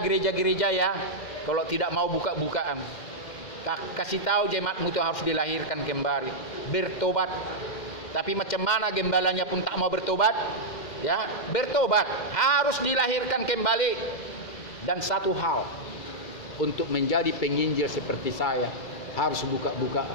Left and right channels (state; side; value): late; right; 2.1 ms